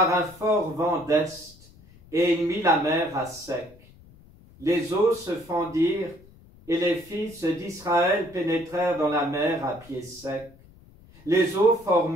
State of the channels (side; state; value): left; noise; rumble, 25 dB below the sound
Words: un fort vent d'est, et il mit la mer à sec. Les eaux se fendirent, et les fils d'Israël pénétrèrent dans la mer à pied sec, les eaux